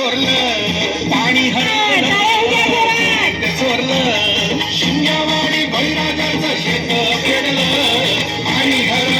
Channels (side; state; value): both; identical; correlation 1.00